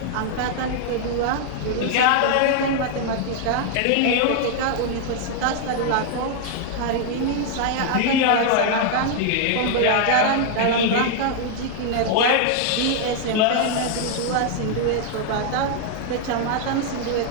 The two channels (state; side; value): different; both; correlation 0.00